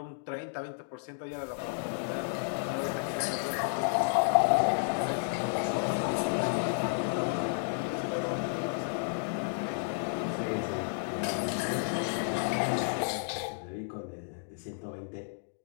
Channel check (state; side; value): silent; right; digital silence